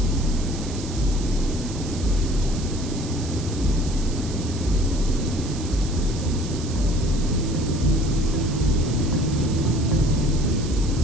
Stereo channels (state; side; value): noise; right; hiss, 13 dB below the sound